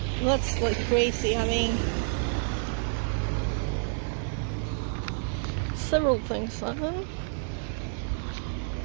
That's like crazy having several things on.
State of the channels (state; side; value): silent; left; 59 dB below the other